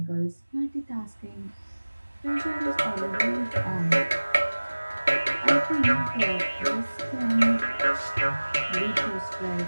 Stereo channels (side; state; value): both; inverted; correlation -1.00